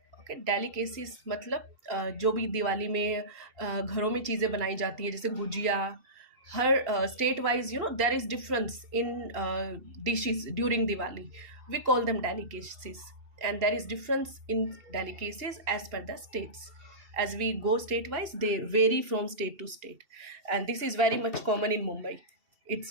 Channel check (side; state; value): left; late; 2.7 ms